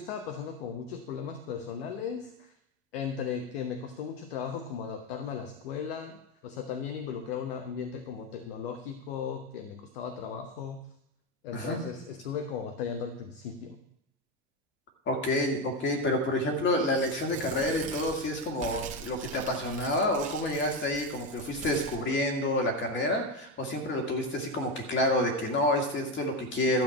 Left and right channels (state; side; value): normal; both; correlation 0.13